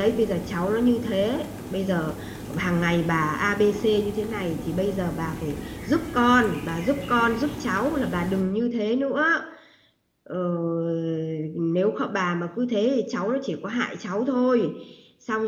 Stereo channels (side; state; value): both; identical; correlation 1.00